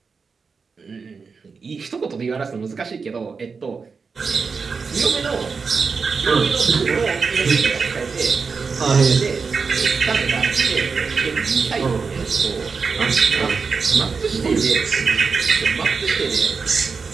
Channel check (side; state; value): left; quieter; 5.1 dB